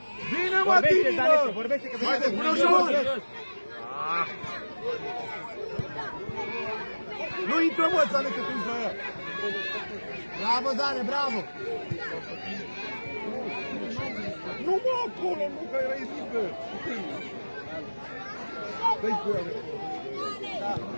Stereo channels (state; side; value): inverted; both; correlation -1.00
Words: Bine, mă, Tini, mă! Vorbește că Haide, până jos! Nu intră, mă, Zane, că tu ești la ea! Bravo, Zane, bravo! Nu, mă, acolo, nu, că erai mică! Dă-i cu ea,